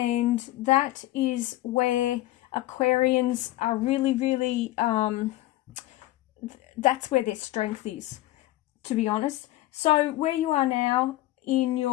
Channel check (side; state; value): right; quieter; 16.5 dB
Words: that is where Aquarians are really, that's where their strength is, to be honest. So where you are now in